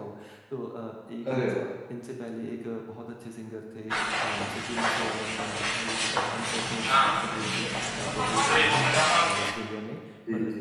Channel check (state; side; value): identical; both; correlation 1.00